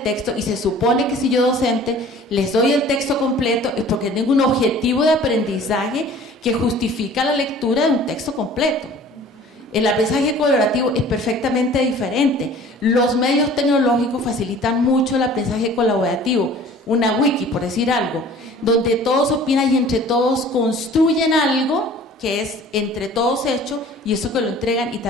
texto y se supone que si yo docente les doy el texto completo es porque tengo un objetivo de aprendizaje que justifica la lectura de un texto completo. El aprendizaje colaborativo es perfectamente diferente. Los medios tecnológicos facilitan mucho el aprendizaje colaborativo. Una wiki, por decir algo, donde todos opinan y entre todos construyen algo que es entre todos hecho y eso que lo entregan y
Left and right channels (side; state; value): both; normal; correlation 0.48